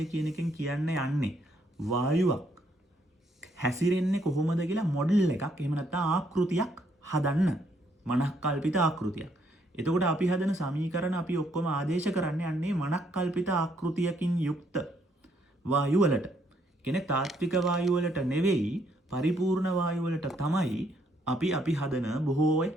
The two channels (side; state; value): both; normal; correlation 0.71